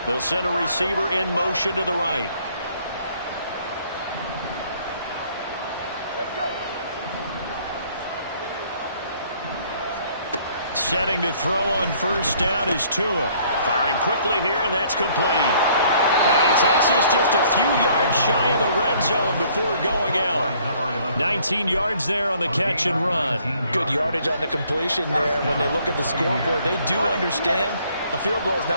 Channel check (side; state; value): both; inverted; correlation -0.61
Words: They'll send a receiver in motion to the right. Setting to throw on 1st down is Tua. Firing quickly here, and that's complete. And he takes this just a few yards shy of the red zone before going out. 19 yards there on the catch and run. Good yardage on the completion there. When they look at the scoreboard, they do understand a field goal is